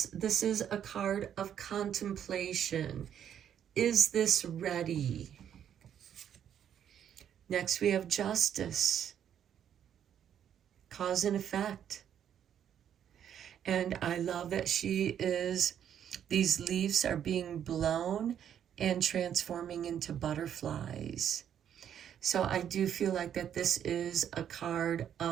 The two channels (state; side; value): quieter; left; 9.4 dB